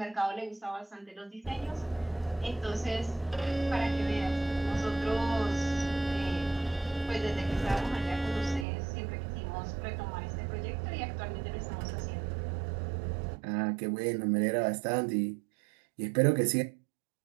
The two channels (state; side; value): drops out; left; at 8.7 s